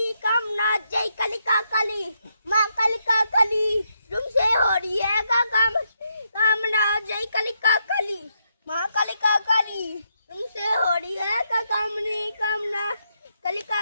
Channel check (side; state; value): both; inverted; correlation -0.79